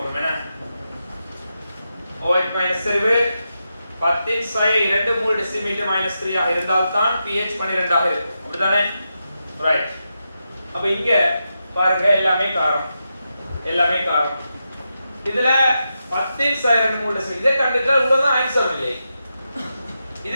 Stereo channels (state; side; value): inverted; both; correlation -0.88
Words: என்ன OH செறிவு 10 சய 2 மோல் டெசிமீட்டர் -3 ஆக இருந்தால் தான் pH 12 ஆக இருக்கும். அப்படிதானே ரைட். அப்ப இங்க பாருங்க எல்லாமே காரம் எல்லாமே காரம். இதுல 10 2 மோல்ட் இதை கண்டுட்டா இவ்வளவுதான் ஆன்சர் இல்லை.